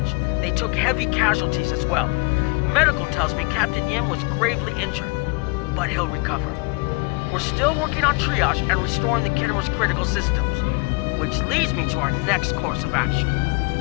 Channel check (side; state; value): right; quieter; 30.1 dB